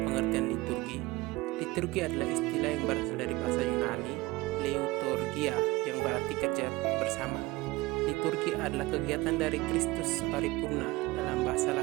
liturgi. Liturgi adalah istilah yang berasal dari bahasa Yunani, liturgia, yang berarti kerja bersama. Liturgi adalah kegiatan dari Kristus paripurna, dalam bahasa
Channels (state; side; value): quieter; left; 20.8 dB